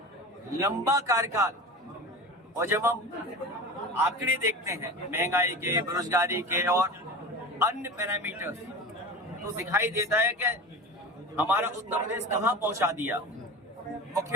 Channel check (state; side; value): normal; both; correlation 0.31